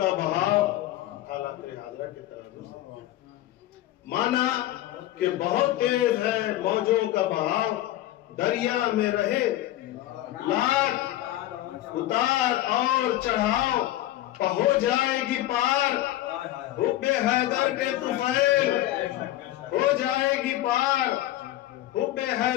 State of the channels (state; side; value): quieter; right; 14.7 dB